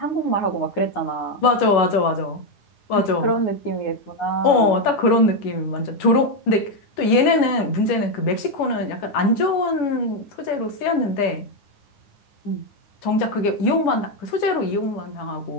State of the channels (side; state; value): right; late; 9.7 ms